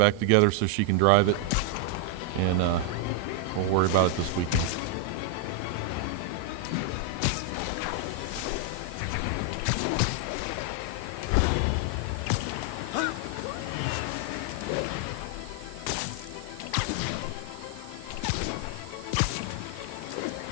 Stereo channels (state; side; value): different; both; correlation 0.00